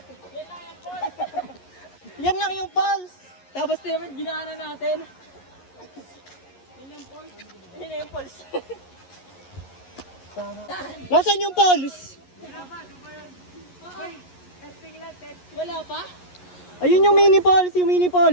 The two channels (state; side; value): late; right; 11 ms